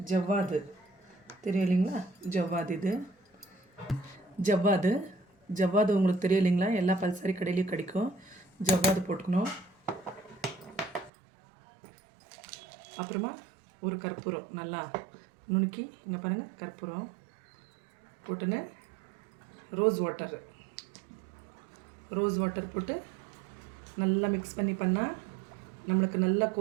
ஜவ்வாது தெரியும் இல்லைங்களா? ஜவ்வாது, இது ஜவ்வாது. ஜவ்வாது உங்களுக்கு தெரியும் இல்லைங்களா? எல்லா பல்சரி கடையிலையும் கிடைக்கும். ஜவ்வாது போட்டுக்கணும். அப்புறமா ஒரு கற்பூரம் நல்லா நுணுக்கி இங்கே பாருங்கள், கற்பூரம் போட்டுன்னு ரோஸ் வாட்டர் போட்டு நல்லா மிக்ஸ் பண்ணால் நம்மளுக்கு நல்லா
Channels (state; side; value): drops out; left; at 11.1 s